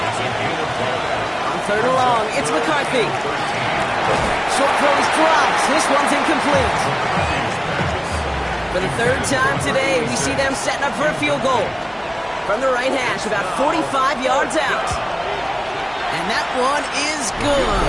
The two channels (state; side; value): identical; both; correlation 1.00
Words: On 3rd and long, it's McCarthy. Short throws drops. This one's incomplete. For the 3rd time today, we see them setting up for a field goal. From the right hash, about 45 yards out. And that one is good.